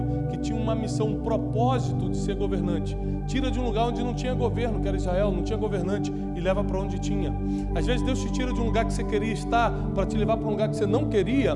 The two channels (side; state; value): both; identical; correlation 1.00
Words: que tinha uma missão, um propósito de ser governante. Tira de um lugar onde não tinha governo, que era Israel, não tinha governante, e leva para onde tinha. Às vezes Deus te tira de um lugar que você queria estar para te levar para um lugar que você não queria,